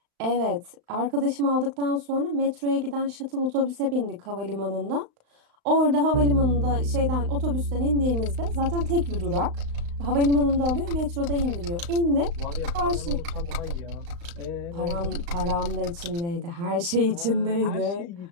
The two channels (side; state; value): left; late; 35 ms